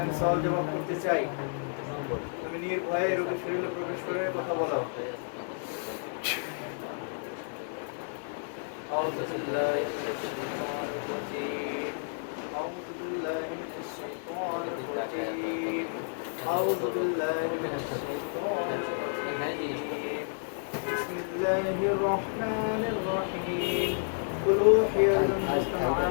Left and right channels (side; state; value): right; silent; digital silence